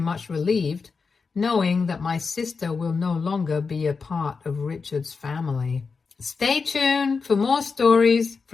relieved, knowing that my sister will no longer be a part of Richard's family. Stay tuned for more stories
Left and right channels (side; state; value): right; quieter; 4.9 dB